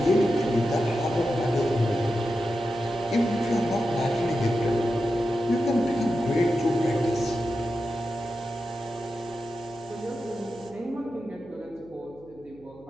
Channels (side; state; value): right; noise; hum, 25 dB below the sound